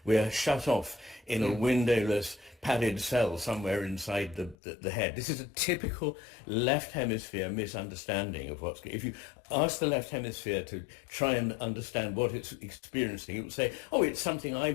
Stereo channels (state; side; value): drops out; right; at 4.5 s